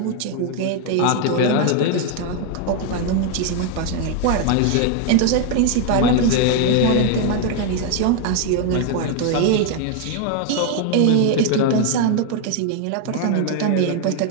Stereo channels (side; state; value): both; different; correlation 0.01